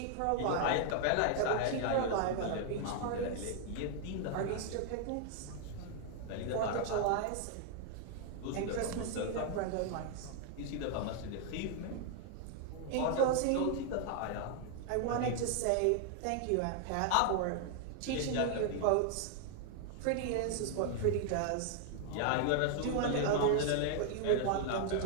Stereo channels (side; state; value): both; different; correlation 0.00